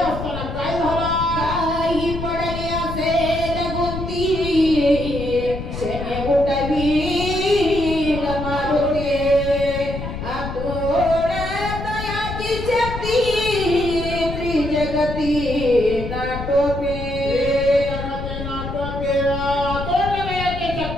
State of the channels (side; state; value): left; noise; rumble, 7 dB below the sound